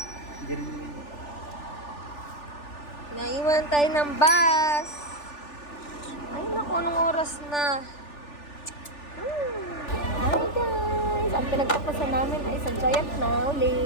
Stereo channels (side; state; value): right; late; 3.4 ms